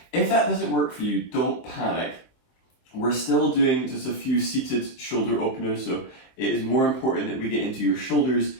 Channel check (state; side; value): late; right; 23 ms